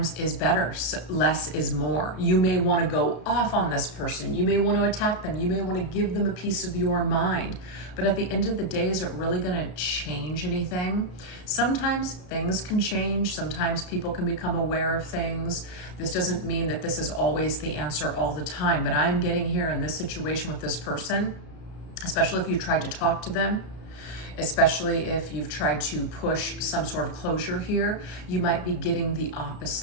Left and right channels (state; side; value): late; right; 33 ms